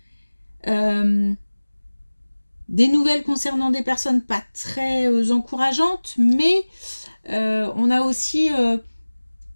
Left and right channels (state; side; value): inverted; both; correlation -1.00